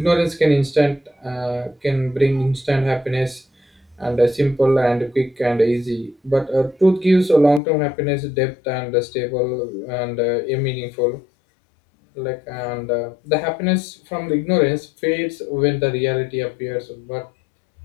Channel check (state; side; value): drops out; right; at 7.6 s